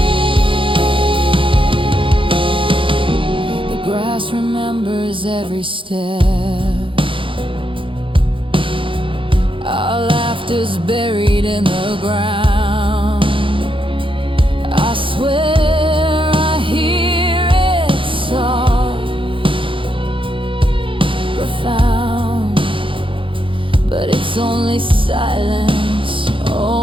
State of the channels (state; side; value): late; left; 0.25 ms